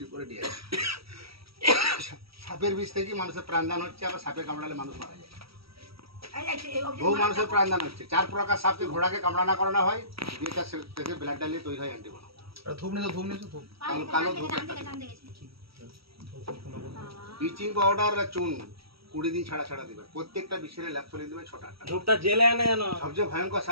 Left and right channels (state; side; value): late; left; 0.76 ms